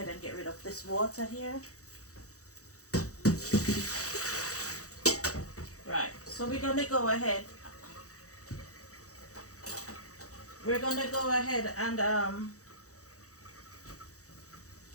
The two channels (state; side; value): late; right; 0.65 ms